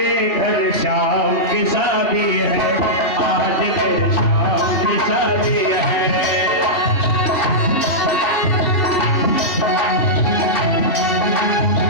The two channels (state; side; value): late; right; 3.4 ms